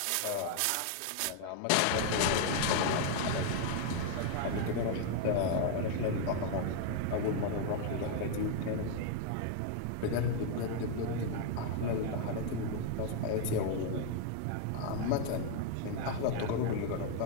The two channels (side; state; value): both; different; correlation 0.00